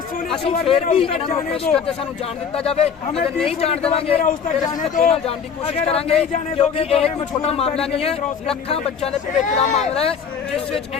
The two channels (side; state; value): right; quieter; 6.8 dB